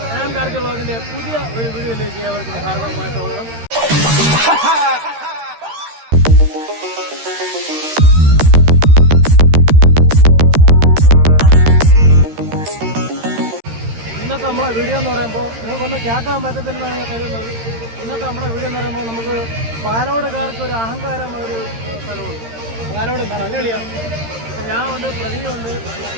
ഞാൻ കാർത്തി വ്ളോഗിന്റെ പുതിയ ഒരു വീഡിയോയിലേക്ക് ഏവർക്കും ഹാർദവമായ സ്വാഗതം. ഇന്നത്തെ നമ്മളെ വീഡിയോ എന്ന് പറയുമ്പോൾ നിങ്ങൾക്കൊന്നും കേൾക്കാൻ പറ്റത്തില്ലെന്നാണ് ഞാൻ കരുതുന്നത്. ഇന്നത്തെ നമ്മുടെ വീഡിയോ എന്ന് പറയുമ്പോൾ നമുക്ക് പാലോടുകാർക്ക് ഒരു അഹങ്കാരം ഒരു സ്ഥലമുണ്ട്. പാലോട് കളിയാണ്. ഞാൻ ഉണ്ട്, പ്രതിയുണ്ട്,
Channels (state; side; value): late; left; 13 ms